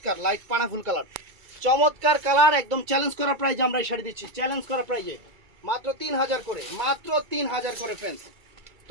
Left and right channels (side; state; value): left; late; 2.3 ms